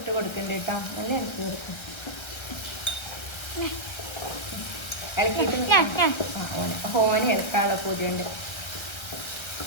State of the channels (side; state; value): right; late; 1.3 ms